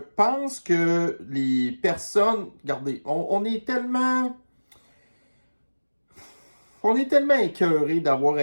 que les personnes, regardez, on est tellement écœurés d'avoir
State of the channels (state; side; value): inverted; both; correlation -1.00